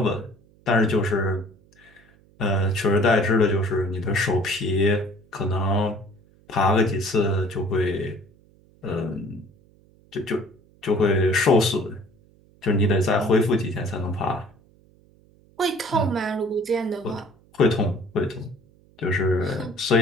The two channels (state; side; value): noise; right; hum, 30 dB below the sound